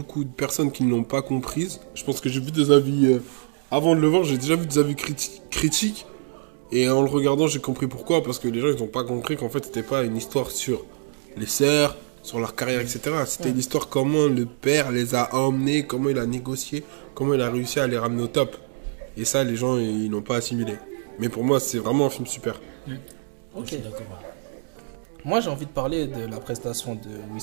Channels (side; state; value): left; silent; digital silence